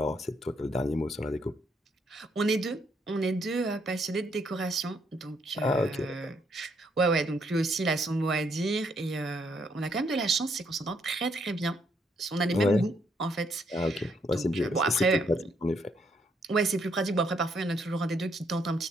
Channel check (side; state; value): both; normal; correlation 0.72